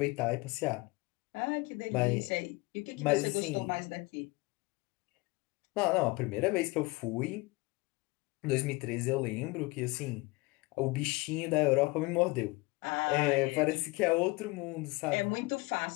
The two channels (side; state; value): right; quieter; 24.0 dB